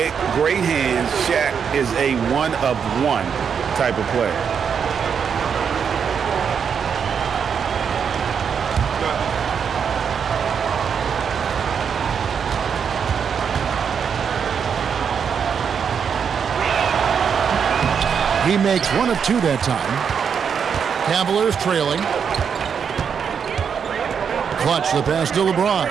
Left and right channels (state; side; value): quieter; left; 7.0 dB